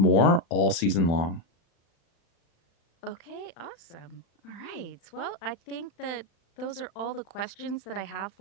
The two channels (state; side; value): late; right; 36 ms